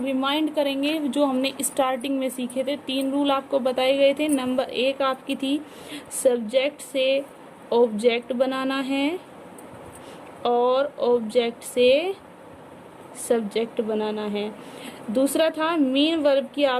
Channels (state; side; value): identical; both; correlation 1.00